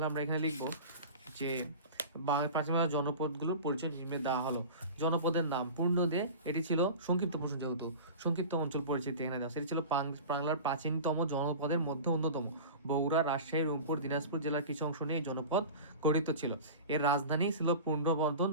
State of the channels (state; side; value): inverted; both; correlation -0.33